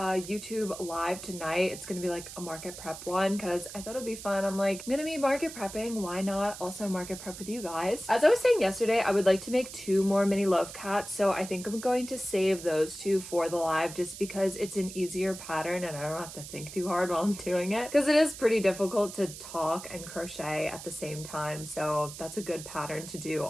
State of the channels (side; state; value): right; noise; hiss, 12 dB below the sound